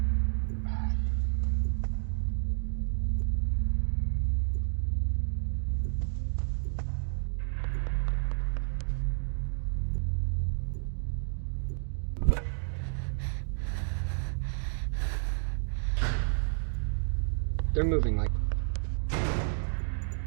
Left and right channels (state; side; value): silent; left; digital silence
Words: They're moving like...